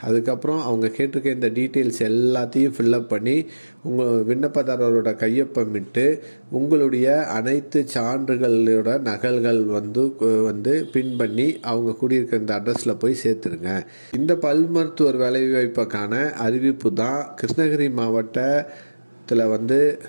அதுக்கப்புறம் அவங்க கேட்டிருக்க இந்த டீட்டெயில்ஸ் எல்லாத்தையும் ஃபில்லப் பண்ணி உங்கள் விண்ணப்பதாரரோட கையொப்பமிட்டு உங்களுடைய அனைத்து சான்றுகளோட நகல்கள் பின் பண்ணி அவங்க கூடியிருக்க இந்த அட்ரஸில் போய் சேர்த்துருங்க. இந்த பல் மருத்துவர் வேலைவாய்ப்புக்கான அறிவிப்பு தான் கிருஷ்ணகிரி மாவட்டத்தில்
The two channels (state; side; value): inverted; both; correlation -1.00